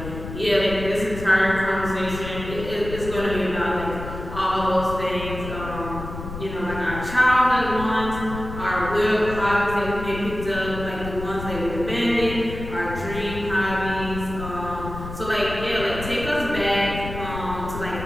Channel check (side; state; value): left; noise; rumble, 9 dB below the sound